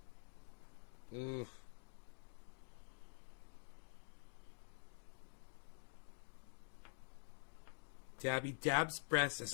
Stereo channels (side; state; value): right; silent; digital silence